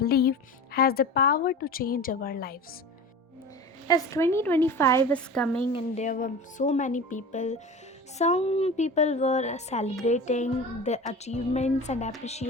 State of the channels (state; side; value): normal; both; correlation 0.33